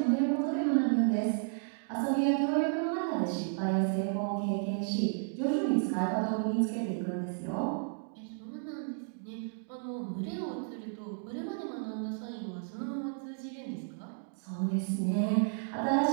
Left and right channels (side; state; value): left; silent; digital silence